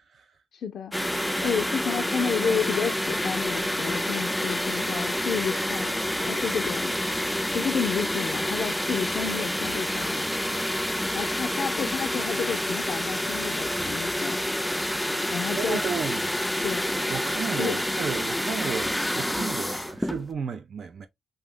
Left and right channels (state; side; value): normal; both; correlation 0.89